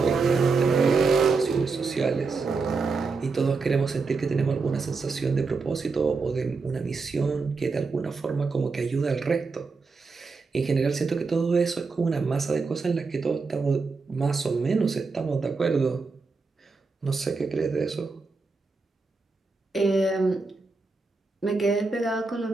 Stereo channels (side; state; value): left; quieter; 4.3 dB